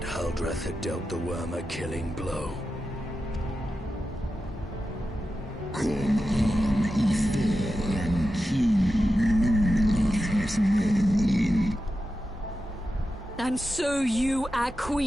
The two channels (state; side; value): normal; both; correlation 0.91